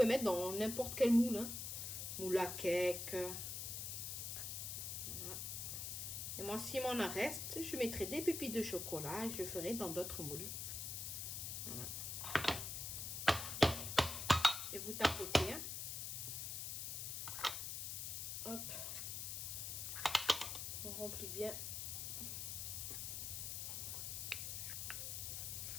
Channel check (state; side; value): noise; left; hiss, 4 dB below the sound